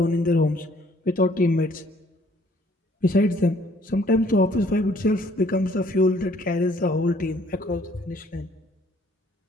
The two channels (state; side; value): normal; both; correlation 0.61